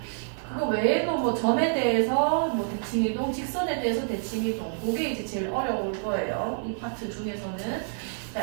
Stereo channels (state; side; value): silent; left; 60 dB below the other